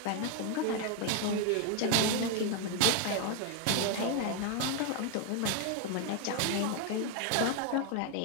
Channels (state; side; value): different; both; correlation 0.01